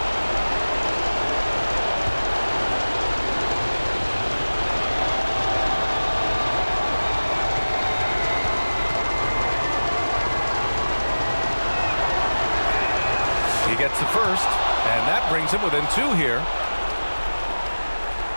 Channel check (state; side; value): inverted; both; correlation -1.00